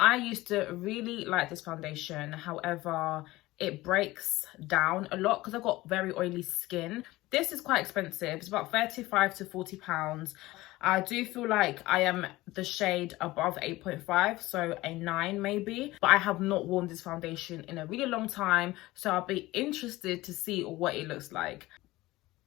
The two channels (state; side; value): quieter; right; 18.7 dB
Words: used to really like this foundation. However, it breaks down a lot because I've got very oily skin. This is quite expensive. It's about 35 to 40 pounds. I do feel like I am the shade above 8.5, so a 9 maybe. But I have not worn this foundation in a really long time, so I'll be interested to see what it looks like.